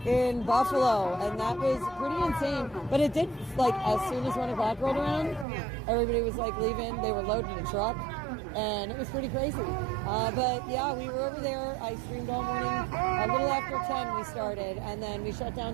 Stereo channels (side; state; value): left; drops out; at 5.5 s